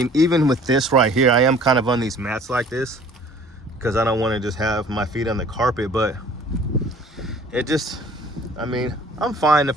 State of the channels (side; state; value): both; normal; correlation 0.51